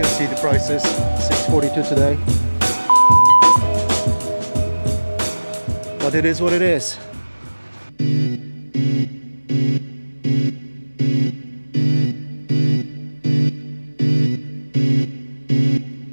see the prices, $6.42 today, but it is what it is.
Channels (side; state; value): both; inverted; correlation -1.00